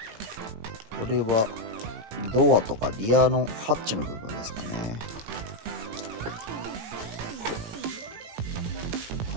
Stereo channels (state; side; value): late; left; 18 ms